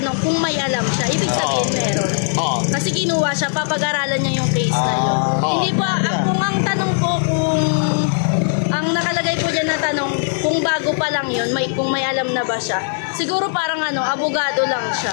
kung may alam siya. Ibig sabihin meron. Kasi kinuha siya, papag-aralan niya yung case na yun. Hindi po, kung ang tanong po kung ang nakalagay po dyan na tanong, kung bago pa lang yun, kung may alam na ba siya, siguro parang abogado lang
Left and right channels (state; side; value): silent; right; 67 dB below the other